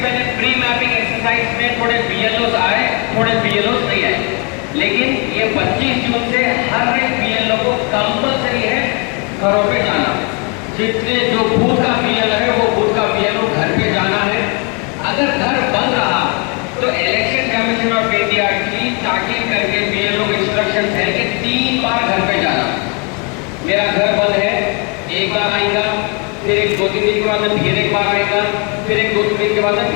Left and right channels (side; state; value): right; quieter; 33.4 dB